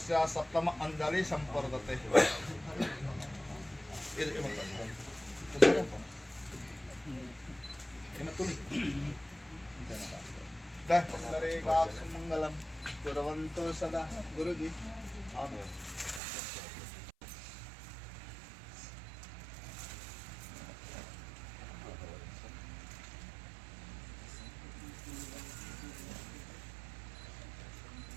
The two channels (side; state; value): left; drops out; at 16.2 s